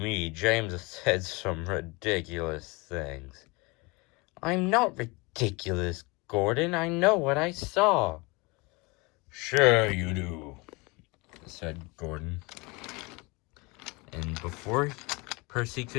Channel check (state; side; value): quieter; right; 26.3 dB